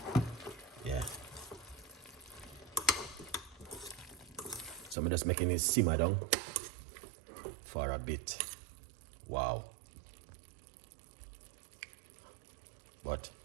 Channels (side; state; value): left; drops out; at 5.0 s